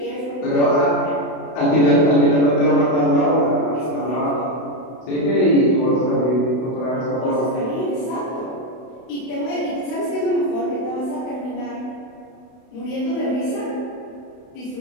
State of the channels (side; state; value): right; late; 32 ms